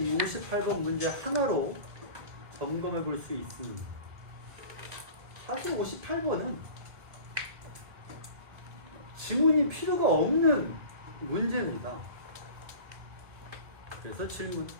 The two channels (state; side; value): late; left; 1.9 ms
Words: 58번 문제 하나로 점검해 볼 수 있습니다. 사실 58번은 지문이 필요가 없는 문제입니다. 그래서 질문,